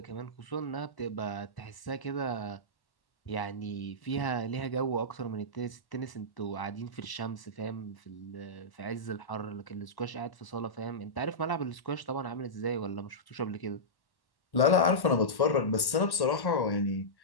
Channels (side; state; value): right; late; 1.1 ms